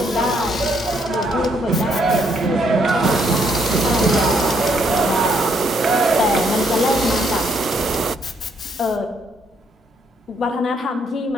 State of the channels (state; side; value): normal; both; correlation 0.71